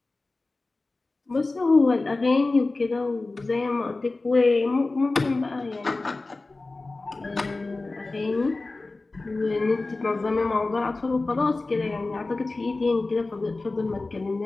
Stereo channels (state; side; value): quieter; right; 3.3 dB